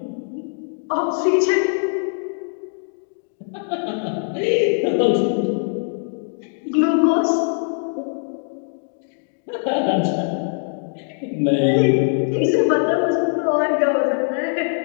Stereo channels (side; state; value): right; silent; 64 dB below the other